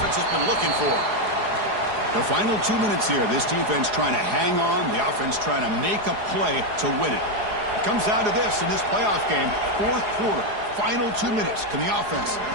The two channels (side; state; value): left; late; 4.8 ms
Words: has been looking for. The final 2 minutes here. This defense trying to hang on. The offense trying to make a play to win it. It comes down to this in this playoff game. Fourth quarter. Final 2 minutes. Can the offense